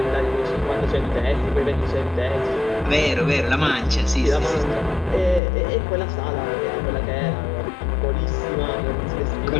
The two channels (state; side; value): drops out; right; at 5.4 s